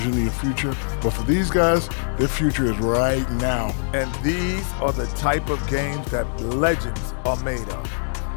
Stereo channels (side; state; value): right; silent; digital silence